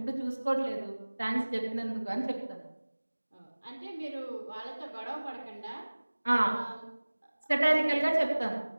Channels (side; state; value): both; inverted; correlation -1.00